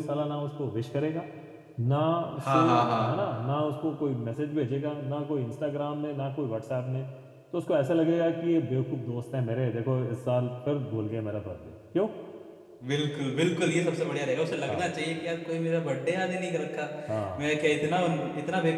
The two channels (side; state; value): both; identical; correlation 1.00